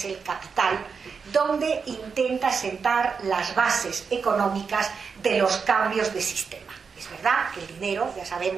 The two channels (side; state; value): left; quieter; 5.6 dB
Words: el Capital, donde intenta sentar las bases económicas de los cambios de sistema. Es verdad que el dinero, ya